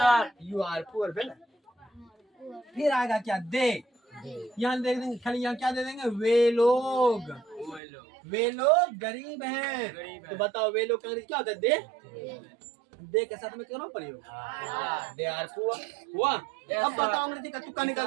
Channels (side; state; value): left; drops out; at 7.8 s